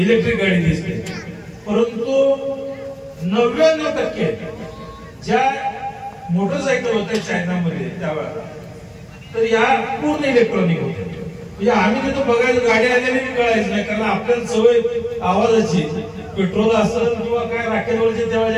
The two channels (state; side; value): identical; both; correlation 1.00